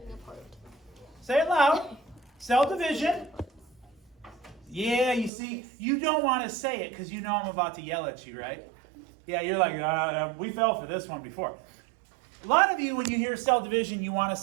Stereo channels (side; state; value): left; drops out; at 5.3 s